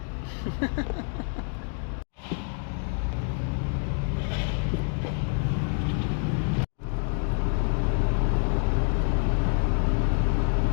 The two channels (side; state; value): right; quieter; 39.7 dB